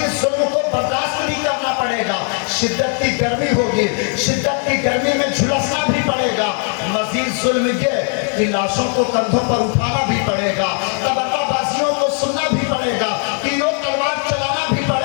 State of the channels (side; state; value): right; quieter; 38.1 dB